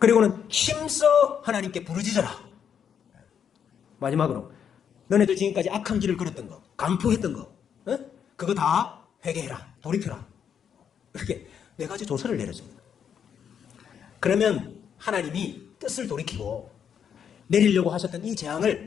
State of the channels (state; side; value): quieter; right; 8.0 dB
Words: 힘써 하나님께 부르짖어라. 마지막으로 너네들 지금까지 악한 길을 걸었던 거, 간포했던 거, 그거 다 회개해라, 돌이켜라. 이렇게 4가지 조서를 내렸습니다. 그러면 하나님이 뜻을 돌이키고 내리려고 하셨던 이